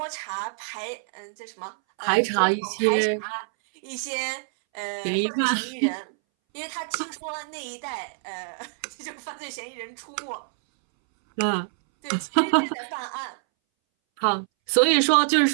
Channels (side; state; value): left; silent; 61 dB below the other